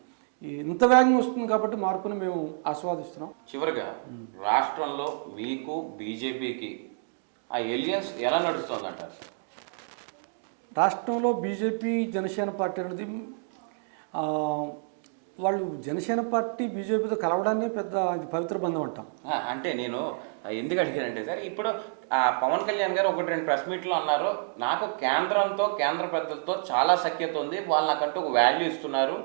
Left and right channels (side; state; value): left; silent; digital silence